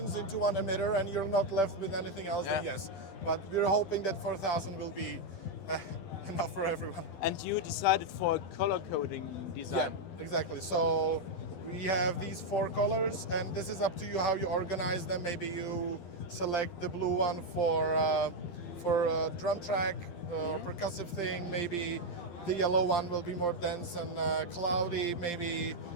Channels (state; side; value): late; right; 12 ms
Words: into one emitter and you're not left with anything else, then yes. But we're hoping that 4,000 will be enough for everyone. And you decided for a color coding design. Yeah, exactly. So we have these 4 colors, and this is up to you how you organize them. Maybe you select the blue one for a drum track or percussive thing. Maybe the yellow one will be more dense and cloudy. Maybe